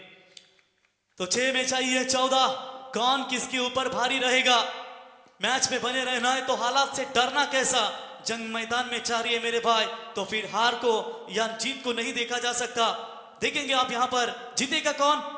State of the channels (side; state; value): both; identical; correlation 1.00